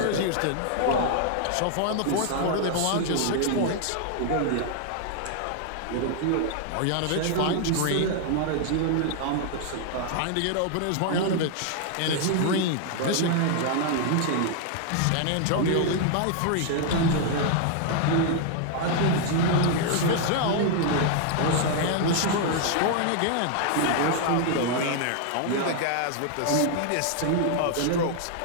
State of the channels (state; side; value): different; both; correlation 0.00